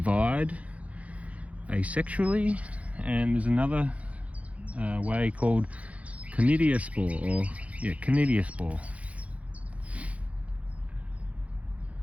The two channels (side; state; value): left; late; 0.066 ms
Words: asexually. And there's another way called conidiospore, conidiospore.